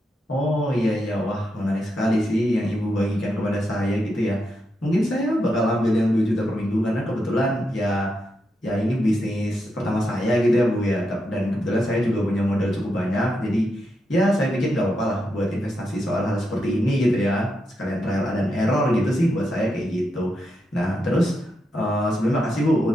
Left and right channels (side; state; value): both; normal; correlation 0.84